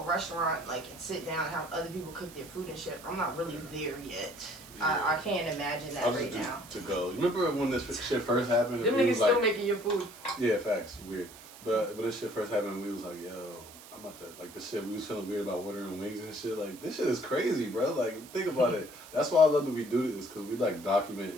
like, and sit down and have other people cook their food and shit. I'm not really there yet. Yeah. I can't imagine that right now. To go. You remember when this shit first happened? Them niggas still making your food. Yeah, facts. Weird. But when this shit first happened, we was like, yo, I'm about to, like, the shit, we was feeling weird about ordering wings and shit. Like, this shit is crazy, bro. Like, think about it. That's why I love that we do this, because we, like, document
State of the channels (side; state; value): right; noise; hiss, 18 dB below the sound